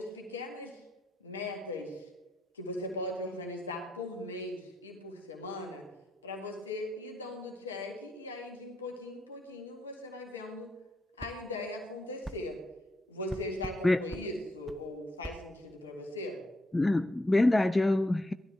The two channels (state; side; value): normal; both; correlation 0.79